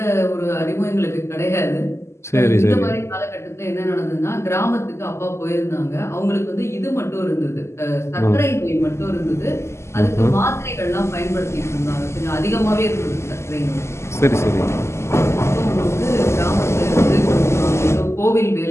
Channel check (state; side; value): late; right; 0.13 ms